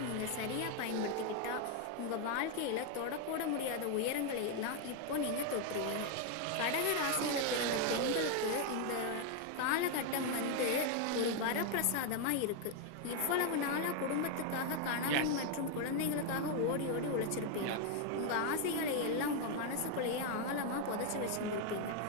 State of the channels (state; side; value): different; both; correlation 0.01